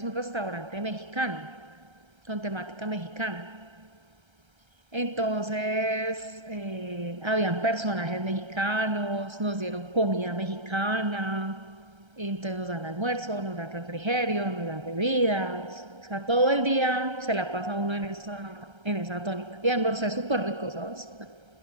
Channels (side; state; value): left; late; 1.3 ms